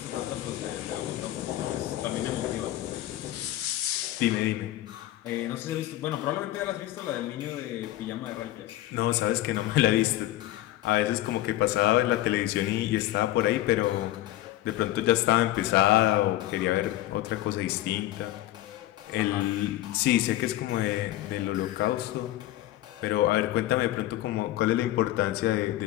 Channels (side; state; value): right; quieter; 14.9 dB